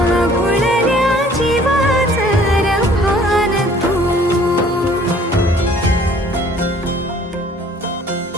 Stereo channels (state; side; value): normal; both; correlation 0.55